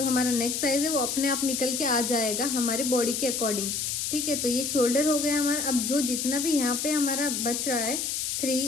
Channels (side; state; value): left; noise; hiss, 1 dB below the sound